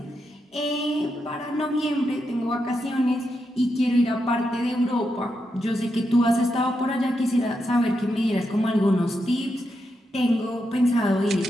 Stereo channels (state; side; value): normal; both; correlation 0.84